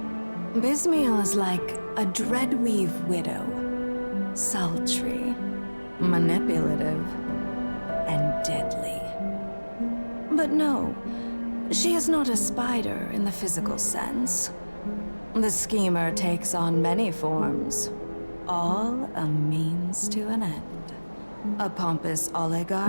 Bysmiel is like a dreadweave widow, sultry, manipulative, and deadly. But no, she is not a spider in the physical sense. The Schemer takes on many forms, all a means to an end. A pompous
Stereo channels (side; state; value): both; inverted; correlation -1.00